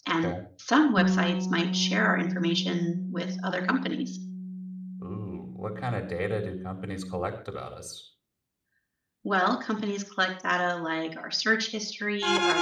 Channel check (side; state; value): both; identical; correlation 1.00